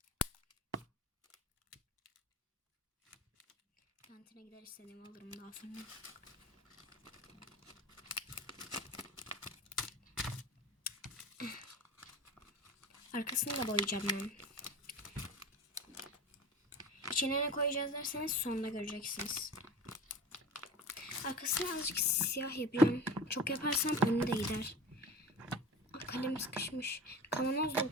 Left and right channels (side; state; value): both; normal; correlation 0.34